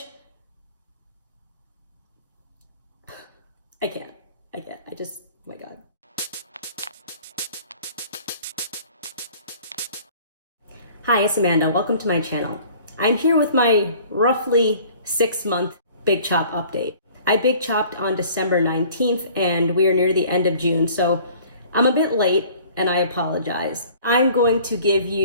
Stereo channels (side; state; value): both; inverted; correlation -0.51